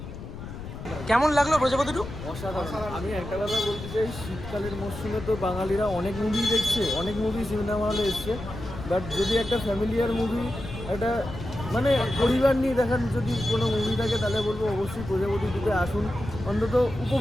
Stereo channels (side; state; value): left; noise; rumble, 11 dB below the sound